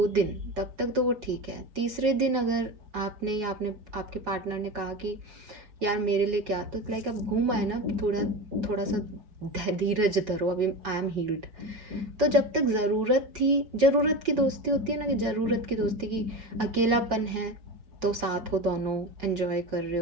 दिन तब तक तो वो ठीक है, तीसरे दिन अगर आपने या आपके पार्टनर ने कहा कि यार मेरे लिए क्या, तो लाइक अब घूम आए ना, थोड़ा सा धीरज धरो, अभी आई एम हील्ड। तो जब तक ज़रूरत की दोस्ती होती है ना, कि ज़रूरत की दोस्ती की अकेलापन है तो साथ हो, दोनों एंजॉय कर रहे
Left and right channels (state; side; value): late; left; 4.7 ms